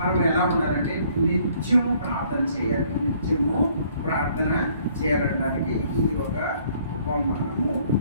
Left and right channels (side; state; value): both; inverted; correlation -0.61